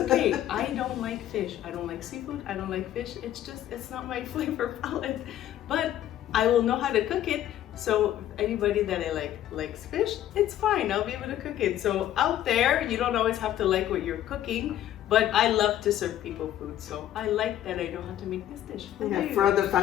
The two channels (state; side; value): quieter; right; 12.2 dB